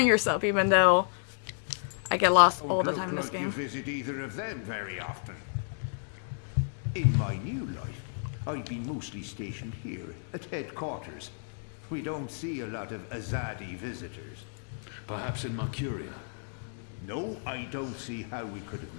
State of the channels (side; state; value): right; silent; digital silence